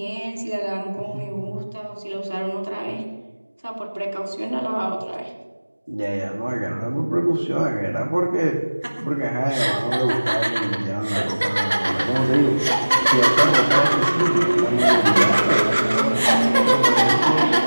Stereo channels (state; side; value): inverted; both; correlation -1.00